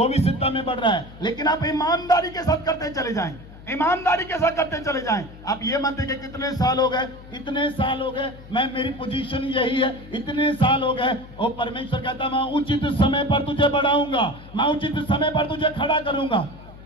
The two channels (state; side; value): noise; left; hum, 18 dB below the sound